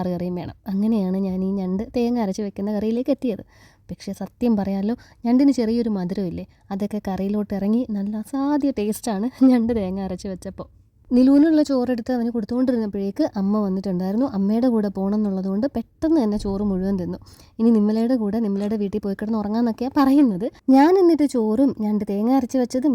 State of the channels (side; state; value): both; identical; correlation 1.00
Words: കറിയും വേണം. അങ്ങനെയാണ് ഞാൻ ഈ ഞണ്ട് തേങ്ങ അരച്ച് വെക്കുന്ന കറിയിലേക്ക് എത്തിയത്. പക്ഷേ സത്യം പറയാമല്ലോ, ഞണ്ടിന് ചെറിയൊരു മധുരമില്ലേ, അതൊക്കെ കറിയിലോട്ട് ഇറങ്ങി നല്ല അസാധ്യ ടേസ്റ്റാണ് ഞണ്ട് തേങ്ങ അരച്ച് വെച്ചപ്പോൾ. നിലൂനുള്ള ചോറെടുത്ത് അവന് കൊടുത്തുകൊണ്ടിരുന്നപ്പോഴേക്ക് അമ്മ വന്നിട്ടുണ്ടായിരുന്നു. അമ്മയുടെ കൂടെ പോകണം എന്നുള്ളതുകൊണ്ട് പെട്ടെന്ന് തന്നെ ചോറ് മുഴുവൻ തിന്നു. ഇനി നിമ്മലയുടെ കൂടെ നിമ്മലയുടെ വീട്ടിൽ പോയി കിടന്ന് ഉറങ്ങാമെന്നൊക്കെയാണ് പറയുന്നത്. ഞാൻ എന്നിട്ട് ചോറും ഞണ്ട് തേങ്ങ അരച്ച് വെച്ചതും